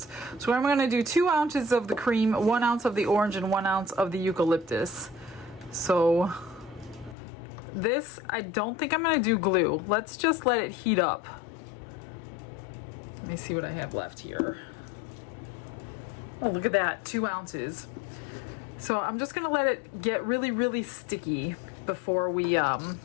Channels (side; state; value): right; drops out; at 7.2 s